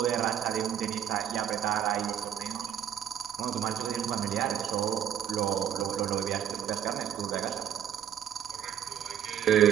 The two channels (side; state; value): left; quieter; 9.8 dB